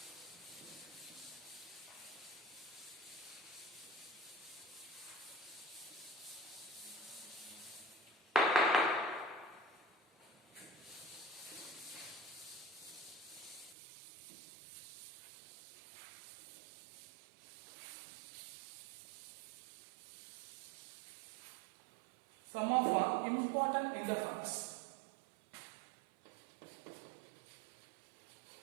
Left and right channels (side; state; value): left; drops out; at 13.8 s